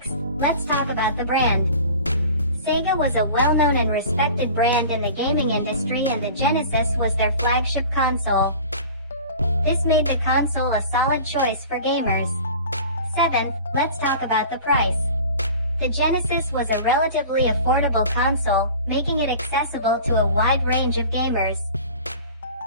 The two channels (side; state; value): both; inverted; correlation -0.41